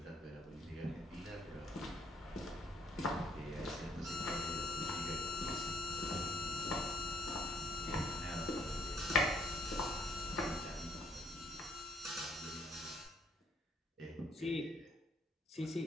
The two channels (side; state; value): both; normal; correlation 0.65